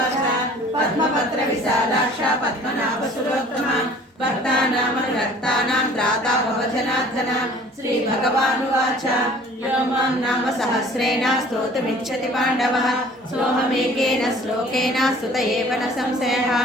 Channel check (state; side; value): normal; both; correlation 0.50